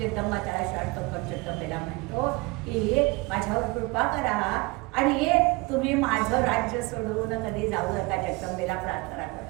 त्याला शाळतो पण जगदंबेला म्हणतो की माझ्यावर कृपा करा आणि तुम्ही माझं राज्य सोडून कधी जाऊ नका. जगदंबेला प्रार्थना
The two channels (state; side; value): quieter; left; 24.4 dB